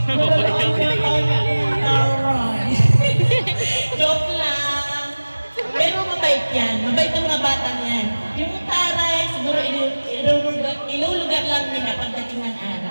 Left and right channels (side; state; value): both; inverted; correlation -1.00